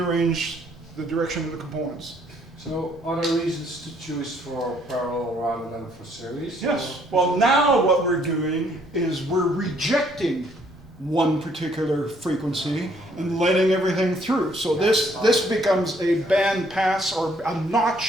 the direction of the components. So are there reasons to choose for parallel rather than for series? Yes. Or- Well, now what we're doing is we're rejecting one particular frequency and letting everything through. So this becomes a band pass or a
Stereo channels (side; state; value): both; normal; correlation 0.65